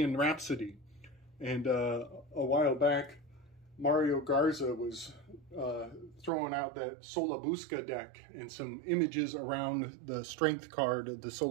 Rhapsody. And a while back, Mario Garza was throwing out that Solabusca deck and some images around the strength card of the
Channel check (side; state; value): left; drops out; at 6.3 s